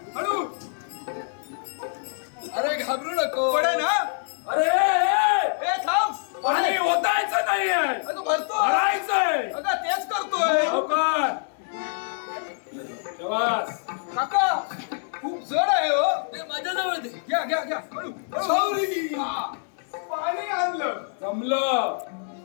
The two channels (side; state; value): right; silent; digital silence